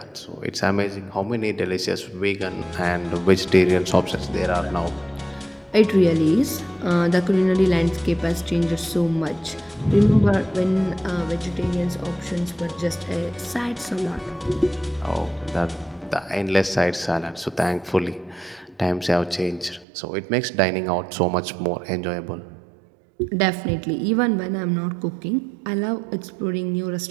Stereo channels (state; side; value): drops out; left; at 19.9 s